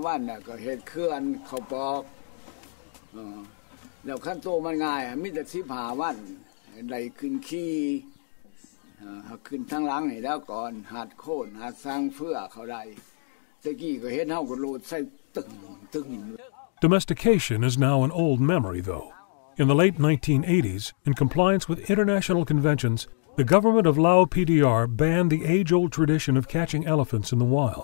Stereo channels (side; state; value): right; silent; digital silence